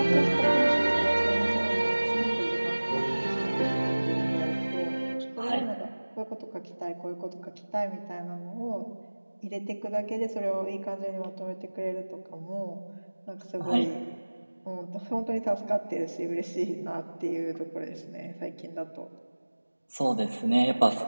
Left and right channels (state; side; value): inverted; both; correlation -1.00